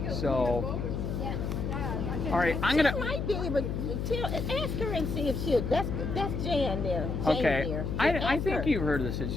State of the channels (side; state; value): left; noise; hum, 2 dB below the sound